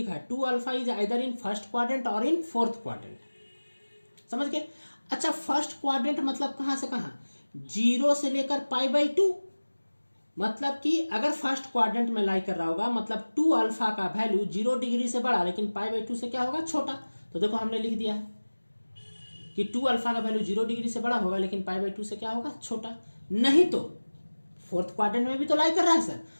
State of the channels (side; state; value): both; inverted; correlation -1.00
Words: है 2α is either in first quadrant और इन फोर्थ क्वाड्रेंट। समझ गए? अच्छा, फर्स्ट क्वाड्रेंट मतलब कहां से कहां? 0 से लेकर π/2। मतलब कि अगर फर्स्ट क्वाड्रेंट में लाई कर रहा होगा मतलब 2α का वैल्यू 0 डिग्री से बड़ा लेकिन π/2 से क्या होगा? छोटा। तो देखो हमने लिख दिया है कि 2α का वैल्यू 0 डिग्री से बड़ा होगा लेकिन π/2 से क्या होगा? छोटा। नहीं तो फोर्थ क्वाड्रेंट में भी तो लाई कर रहा है सर।